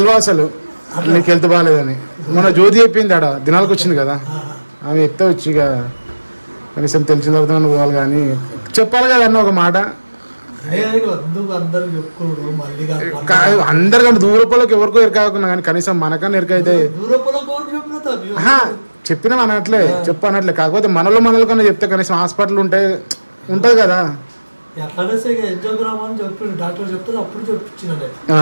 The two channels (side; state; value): both; inverted; correlation -1.00